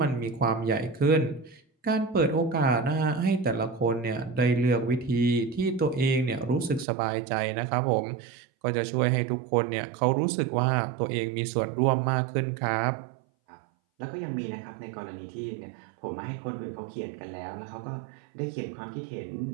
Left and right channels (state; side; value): drops out; left; at 6.9 s